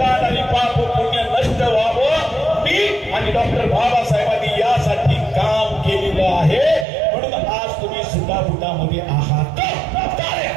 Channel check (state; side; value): drops out; left; at 6.9 s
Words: आणि पाप पुण्य नष्ट व्हावं. मी आणि डॉक्टर बाबासाहेबांनी यासाठी काम केलेलं आहे, म्हणून आज तुम्ही सुटाफुटामध्ये आहात.